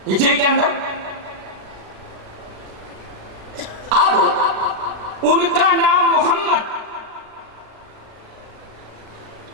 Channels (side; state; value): left; late; 36 ms